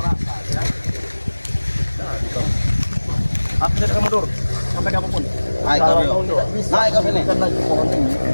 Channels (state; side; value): inverted; both; correlation -1.00